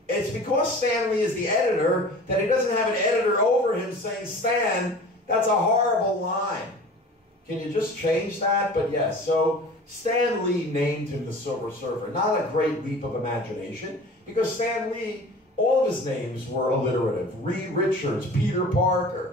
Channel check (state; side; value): normal; both; correlation 0.41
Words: It's because Stan Lee is the editor that he doesn't have an editor over him saying, Stan, that's a horrible line. Can you just change that? But yes, so Stan Lee named him the Silver Surfer. Not a great leap of imagination, because Stan Lee, all of his names were alliterative. Reed Richards, Peter